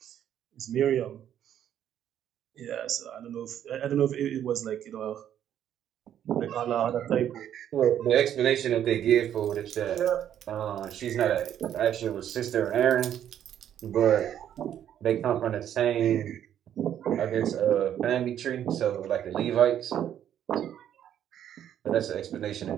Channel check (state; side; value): quieter; left; 10.3 dB